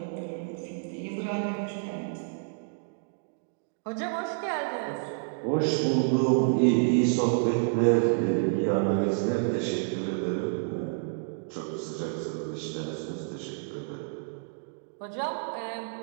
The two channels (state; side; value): silent; left; digital silence